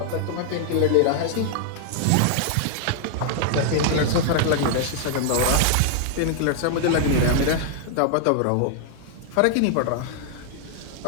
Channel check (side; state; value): both; different; correlation 0.00